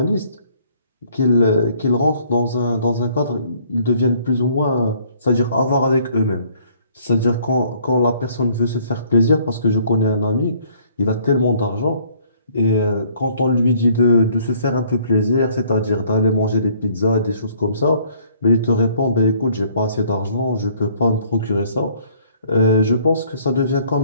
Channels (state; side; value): inverted; both; correlation -0.61